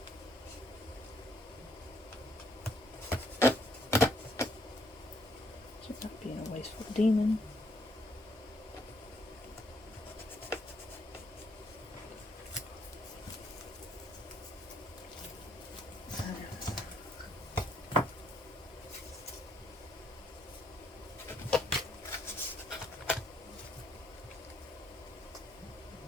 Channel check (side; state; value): both; normal; correlation 0.70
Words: So not being a wasteful demon.